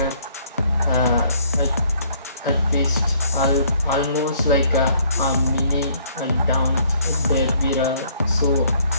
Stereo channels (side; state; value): both; inverted; correlation -0.62